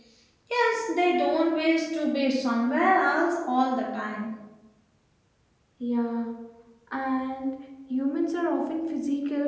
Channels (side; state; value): both; identical; correlation 1.00